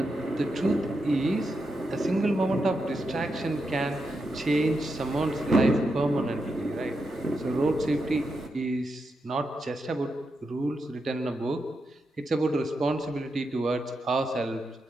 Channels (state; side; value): normal; both; correlation 0.86